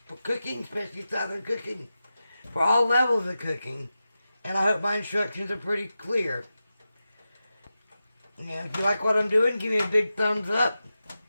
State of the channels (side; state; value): both; inverted; correlation -0.92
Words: cooking, especially Southern cooking, for all levels of cooking. And I hope my instructions are pretty clear. And if you like what I'm doing, give me a big thumbs up.